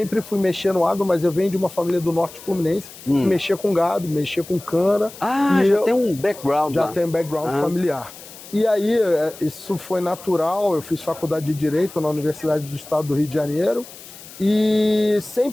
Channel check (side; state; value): left; noise; hiss, 17 dB below the sound